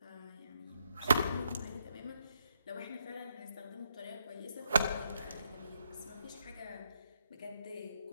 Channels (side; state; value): both; inverted; correlation -0.77